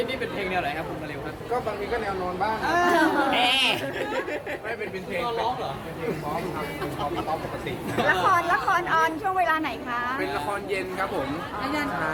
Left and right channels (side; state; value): both; identical; correlation 1.00